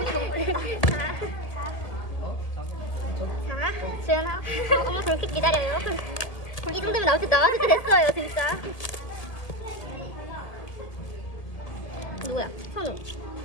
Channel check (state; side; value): late; right; 1.8 ms